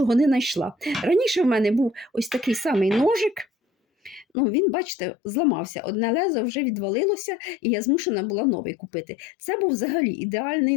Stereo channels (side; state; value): right; drops out; at 4.2 s